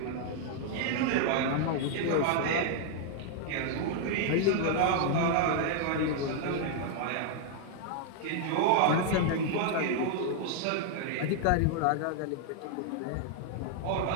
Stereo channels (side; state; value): both; different; correlation 0.00